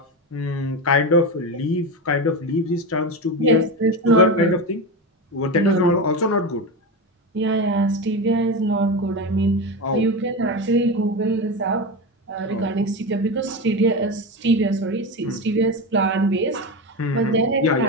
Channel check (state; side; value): normal; both; correlation 0.19